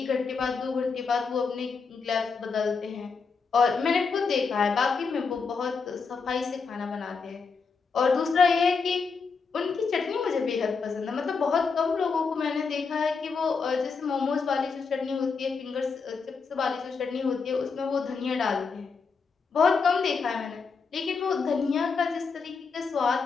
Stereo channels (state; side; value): quieter; right; 5.1 dB